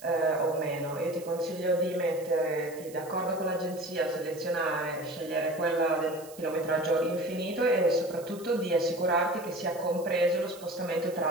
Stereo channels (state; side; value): noise; right; hiss, 19 dB below the sound